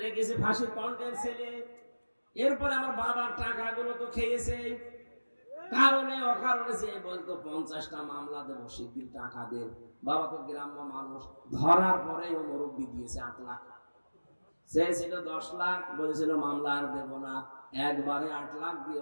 রেখেছে ফাঁসির কন্টেন্ট ছেলে। এরপরে আমার বাবার টাকাগুলো তো খেয়েছে, কারণে অকারণে যে বলতো 50টা মামলা দেবো, শিগগির টাকা দেন। বাবা তো গ্রাম্য মানুষ, ধরার পরে ও মুরব্বি দিয়েছে 8 লাখ। সে ছিল 10 লাখ, বলেছিল মামলা আর দেবো না। একবারে 8 লাখ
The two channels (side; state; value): both; inverted; correlation -1.00